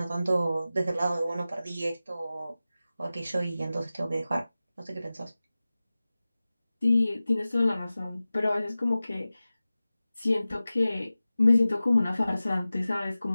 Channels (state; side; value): inverted; both; correlation -0.96